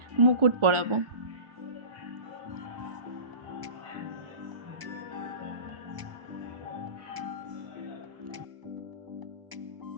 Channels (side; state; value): left; late; 1.4 ms